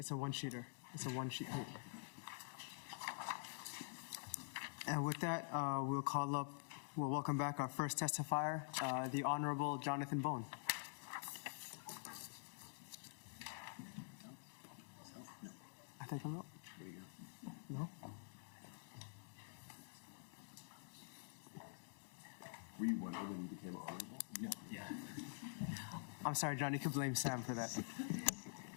a one-sheeter. It's a one-sheet. And with that, we'll welcome back our first testifier, the Honorable Jonathan Bone. I think I'm up. No? Were you wondering when you became honorable? No. Yeah. I'm sorry, John, you can blame Sam for that.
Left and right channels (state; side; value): silent; right; digital silence